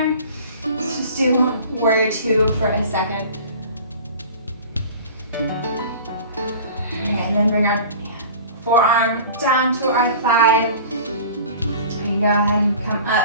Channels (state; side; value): inverted; both; correlation -0.42